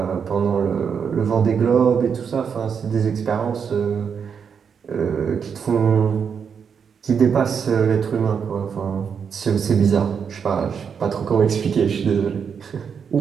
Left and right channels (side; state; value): left; quieter; 6.8 dB